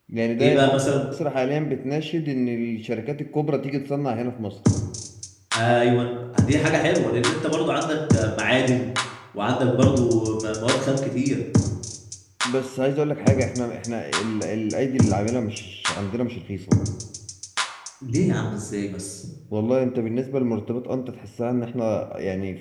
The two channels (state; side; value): identical; both; correlation 1.00